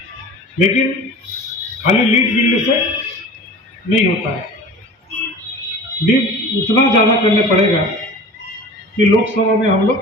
लेकिन खाली लीड मिलने से नहीं होता है। लीड उतना ज़्यादा करने पड़ेगा कि लोकसभा में हम लोग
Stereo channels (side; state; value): both; normal; correlation 0.39